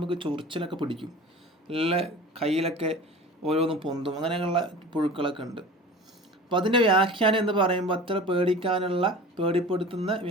ചൊറിച്ചിലൊക്കെ പിടിക്കും, നല്ല കയ്യിലൊക്കെ ഓരോന്നും പൊന്തും, അങ്ങനെയുള്ള പുഴുക്കളൊക്കെ ഉണ്ട്. അപ്പം അതിൻ്റെ വ്യാഖ്യാനം എന്ന് പറയുമ്പോൾ അത്ര പേടിക്കാനുള്ള, പേടിപ്പെടുത്തുന്ന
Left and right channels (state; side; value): normal; both; correlation 0.38